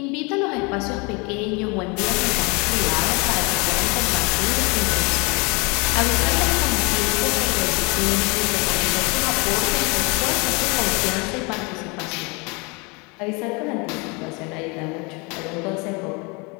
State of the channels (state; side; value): quieter; right; 29.2 dB